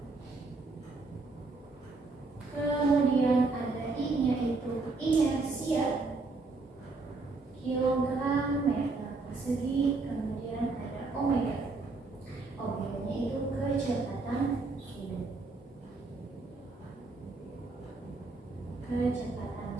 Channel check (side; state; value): left; quieter; 3.6 dB